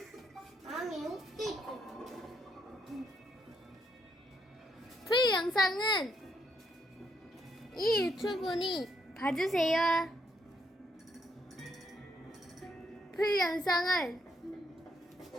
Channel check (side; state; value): both; normal; correlation 0.75